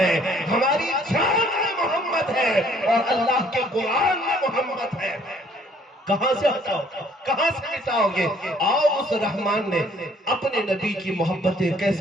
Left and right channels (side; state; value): both; normal; correlation 0.61